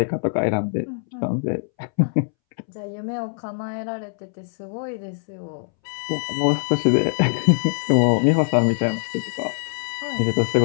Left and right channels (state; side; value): silent; right; 63 dB below the other